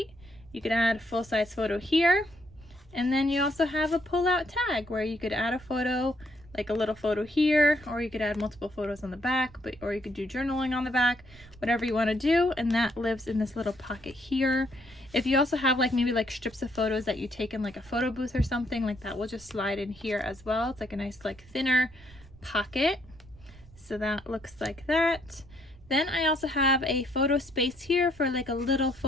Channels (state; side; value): noise; right; rumble, 23 dB below the sound